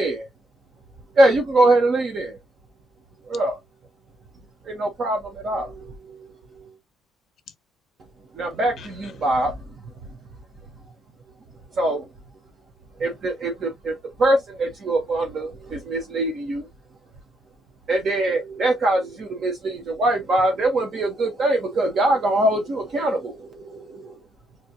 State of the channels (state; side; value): normal; both; correlation 0.76